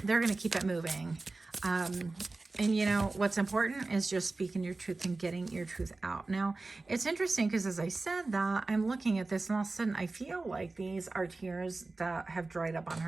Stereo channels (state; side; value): quieter; left; 3.4 dB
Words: going to keep it moving. And you know, what's important is just speaking your truth and getting your truth out. Now, it's interesting because as I said that, I'm looking at this and all of a sudden I feel like these are tears that have dried up on